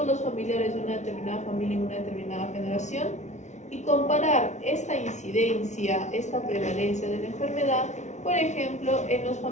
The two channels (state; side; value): late; right; 0.33 ms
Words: los familiares de una determinada familia en una determinada generación y comparar esta incidencia, esta prevalencia de la enfermedad, por ejemplo, en los